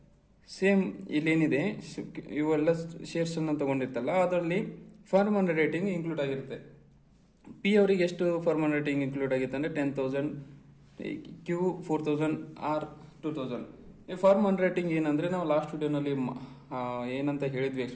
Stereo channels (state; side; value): identical; both; correlation 1.00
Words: ಸೇಮ್ ಇಲ್ಲೇನಿದೆ, ಇವೆಲ್ಲ ಶೇರ್ಸ್ ಅನ್ನ ತಗೊಂಡಿರ್ತಲ್ಲ, ಅದರಲ್ಲಿ ಫಾರ್ಮನ್ ರೇಟಿಂಗ್ ಇನ್ಕ್ಲೂಡ್ ಆಗಿರುತ್ತೆ. ಪಿ ಅವರಿಗೆ ಎಷ್ಟು ಫಾರ್ಮನ್ ರೇಟಿಂಗ್ ಇನ್ಕ್ಲೂಡ್ ಆಗಿತ್ತು ಅಂದ್ರೆ 10,000, Q 4,000, R 2,000. ಈ ಫಾರ್ಮನ್ ರೇಟಿಂಗ್ ಏನಂದ್ರೆ, ನಾವು ಲಾಸ್ಟ್ ವಿಡಿಯೋನಲ್ಲಿ ಏನಂತ ಹೇಳಿದ್ವಿ,